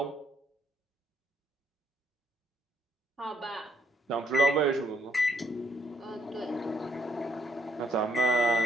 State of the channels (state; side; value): normal; both; correlation 0.70